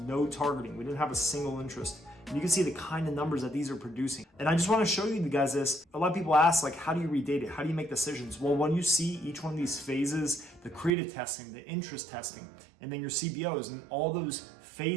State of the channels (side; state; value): left; drops out; at 10.9 s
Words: no targeting. We didn't have a single interest. And you can see the kind of numbers that these are producing. And I just want to show you guys this. A lot of people ask, like, how do you read data? How do you make decisions? Well, when you see each one of these phases, the creative testing, the interest testing, and then your CBOs, and all those